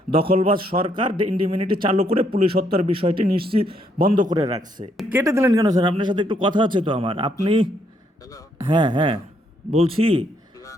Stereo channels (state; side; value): normal; both; correlation 0.72